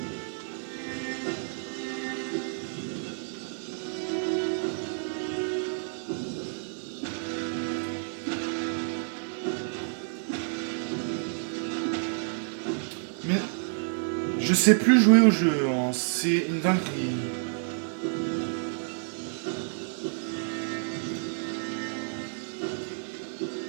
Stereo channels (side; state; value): left; silent; 55 dB below the other